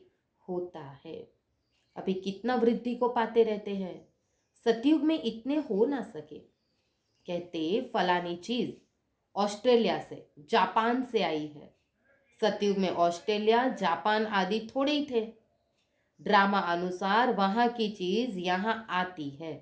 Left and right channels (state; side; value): identical; both; correlation 1.00